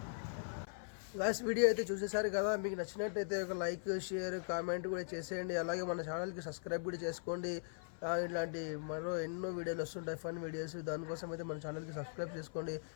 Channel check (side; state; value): right; silent; 51 dB below the other